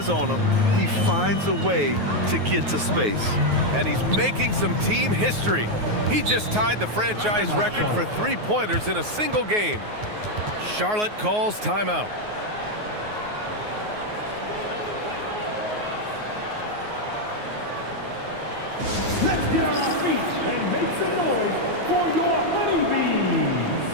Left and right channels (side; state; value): left; late; 9.4 ms